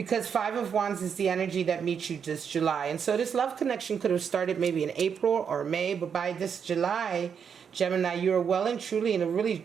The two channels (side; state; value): left; quieter; 7.1 dB